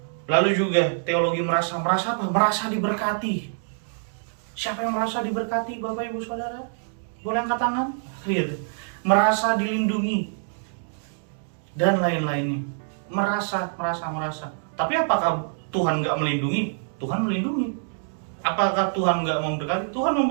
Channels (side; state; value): left; silent; digital silence